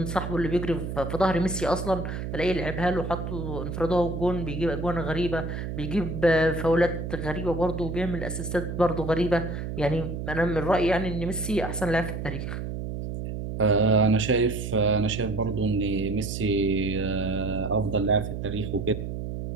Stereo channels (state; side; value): noise; right; hum, 5 dB below the sound